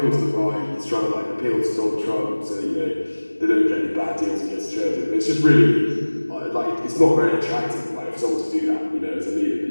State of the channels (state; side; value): inverted; both; correlation -1.00